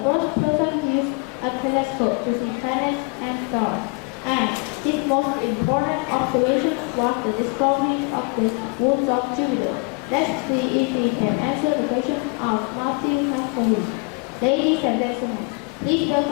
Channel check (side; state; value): right; quieter; 32.2 dB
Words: first person to use a telescope to see planets and stars, and his most important observation was the discovery of the moons of Jupiter. Let's see if he can answer the question of Matthew has for him. Ladies and gentlemen, please